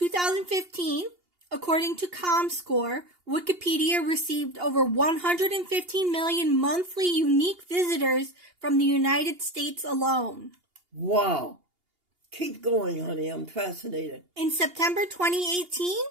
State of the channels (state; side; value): late; left; 2.8 ms